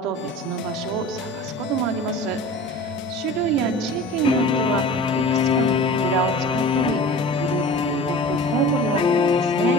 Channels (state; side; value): normal; both; correlation 0.38